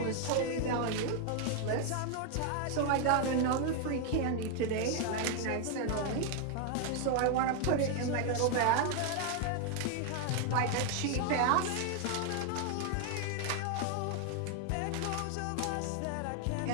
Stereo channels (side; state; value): both; different; correlation 0.00